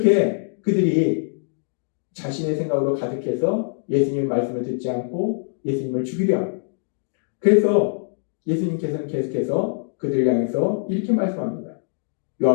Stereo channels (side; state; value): right; silent; digital silence